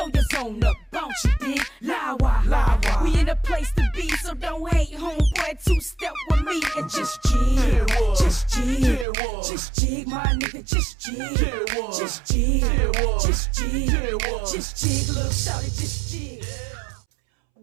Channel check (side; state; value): left; drops out; at 9.1 s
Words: your zone up, bounce, you dig? Lawa, we in a place to be, so don't hate, homeboy. Two-step with me and just jig, just jig, just jig, my nigga, just jig, just jig, just jig, just jig, little shawty, just jig.